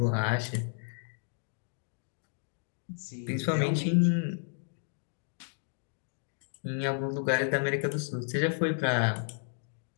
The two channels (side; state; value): right; silent; digital silence